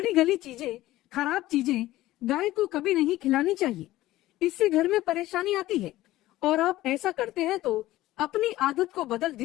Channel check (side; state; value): right; quieter; 16.2 dB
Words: गली चीजें, खराब चीजें गाय को कभी नहीं खिलानी चाहिए। इससे घर में परेशानी आती है और आप ऐसा करते हैं तो अपनी आदत को बदल